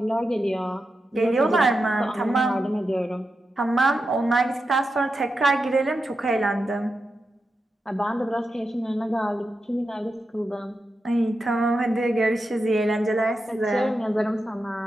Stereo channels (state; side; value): normal; both; correlation 0.88